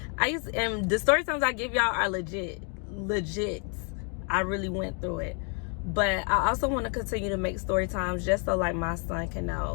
And the story times I give y'all are legit. I really went through it. But I also want to continue to make story times just so like my son can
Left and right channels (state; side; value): quieter; right; 40.0 dB